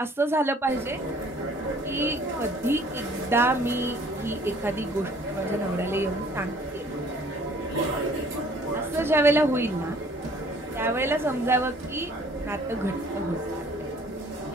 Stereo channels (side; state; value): both; normal; correlation 0.55